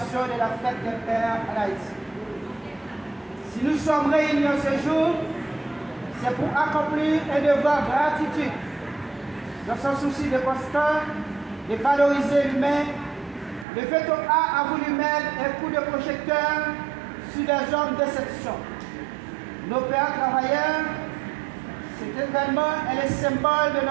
de la fête des pères à Haïti. Si nous sommes réunis ce jour, c'est pour accomplir un devoir de gratitude. Dans son souci de constant, de valoriser l'humain, le VETO A voulu mettre un coup de projecteur sur les hommes d'exception. Nos pères travailleurs, cet événement est le symbole de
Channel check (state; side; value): drops out; left; at 13.7 s